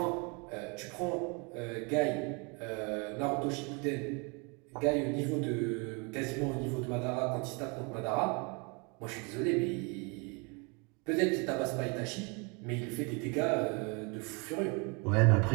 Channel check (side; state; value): left; quieter; 31.9 dB